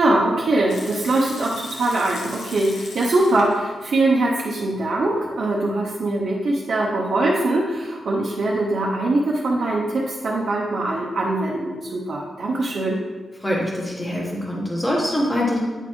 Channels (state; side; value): normal; both; correlation 0.86